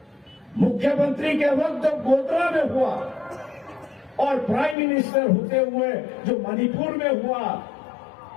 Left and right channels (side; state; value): right; drops out; at 4.8 s